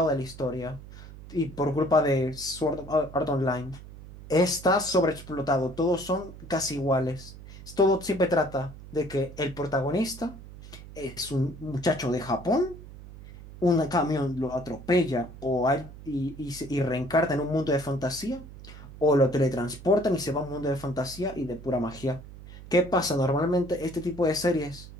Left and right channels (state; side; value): noise; right; hum, 16 dB below the sound